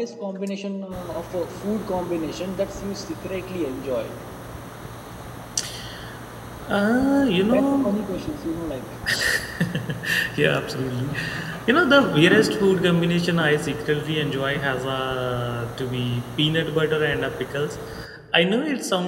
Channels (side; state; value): both; identical; correlation 1.00